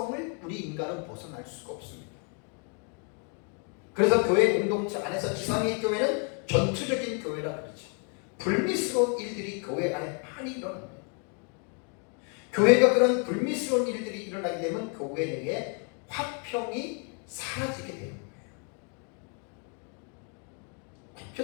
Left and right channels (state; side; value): quieter; right; 39.4 dB